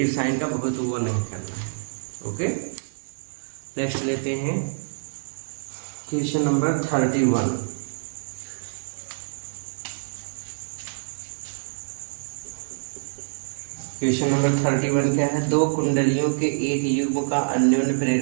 साइन का बहुत वो नहीं करना है। ओके, नेक्स्ट लेते हैं क्वेश्चन नंबर 31। क्वेश्चन नंबर 31 क्या है, दो कुंडलियों के एक युग्म का अन्योन्य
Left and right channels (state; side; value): silent; left; digital silence